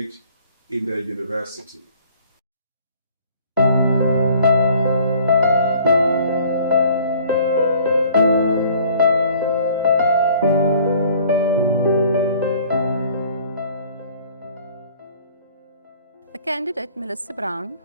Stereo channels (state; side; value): inverted; both; correlation -0.54